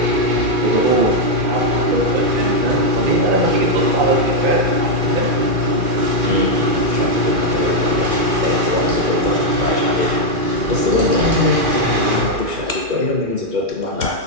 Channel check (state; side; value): late; left; 2.4 ms